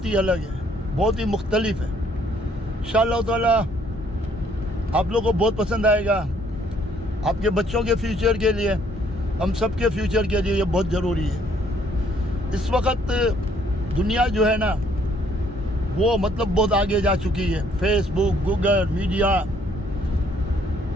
ही अलग है, बहुत ही मुख्तलिफ है। इंशाअल्लाह ताला आप लोगों को बहुत पसंद आएगा। आपके बच्चों के फ्यूचर के लिए, हम सब के फ्यूचर के लिए ये बहुत ज़रूरी है। इस वक्त दुनिया जो है ना वो मतलब बहुत आगे जा चुकी है। फेसबुक, गूगल, मीडिया,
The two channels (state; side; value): normal; both; correlation 0.64